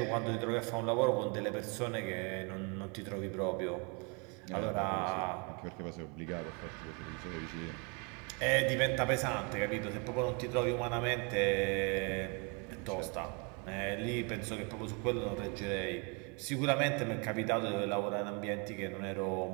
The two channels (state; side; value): quieter; left; 33.4 dB